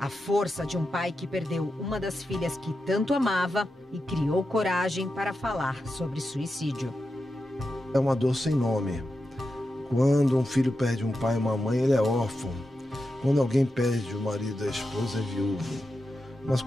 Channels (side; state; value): both; normal; correlation 0.89